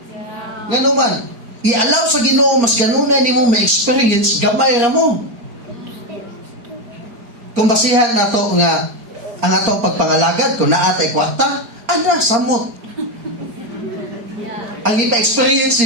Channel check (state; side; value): late; left; 4.4 ms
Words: Ngano man, i-allow sa Ginoo mas ganunay nimo ma-experience gamay ra mo. Kung basihan nato nga ang atong pagpangalagad kung naatay kwarta, ana samot. Ang ipa-experience